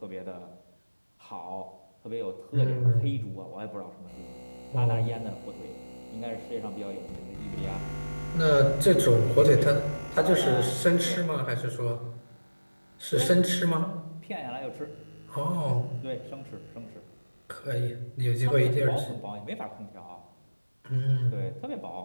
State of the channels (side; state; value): both; inverted; correlation -1.00